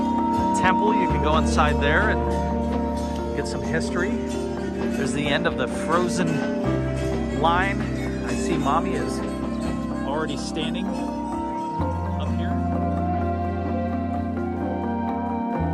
temple. You can go inside there and get some history. There's the end of the frozen line. I see Mommy is already standing up here.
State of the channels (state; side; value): identical; both; correlation 1.00